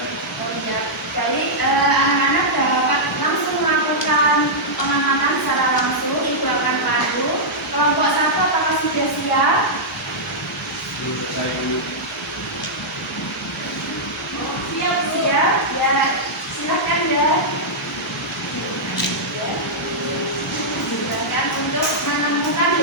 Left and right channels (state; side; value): normal; both; correlation -0.09